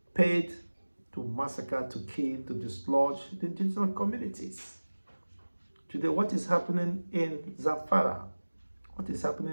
paid to massacre, to kill, to dislodge the indigenous communities. Today, what is happening in Zamfara? What is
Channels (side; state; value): both; inverted; correlation -1.00